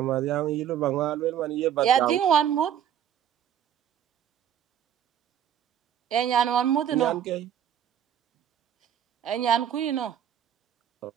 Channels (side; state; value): left; quieter; 9.8 dB